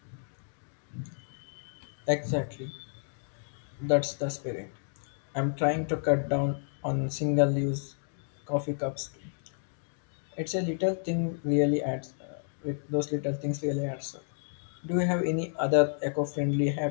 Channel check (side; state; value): right; silent; digital silence